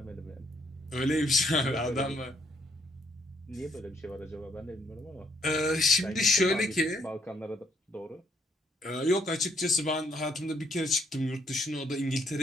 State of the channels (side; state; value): both; normal; correlation 0.70